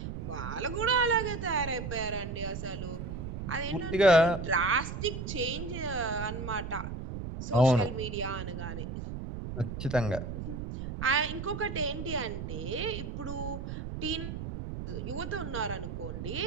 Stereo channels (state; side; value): noise; right; rumble, 6 dB below the sound